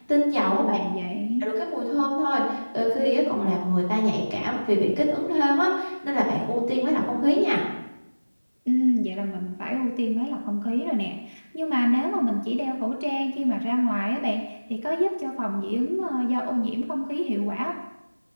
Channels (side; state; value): both; inverted; correlation -1.00